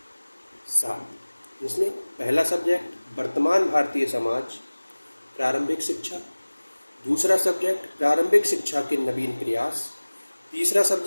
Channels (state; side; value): inverted; both; correlation -1.00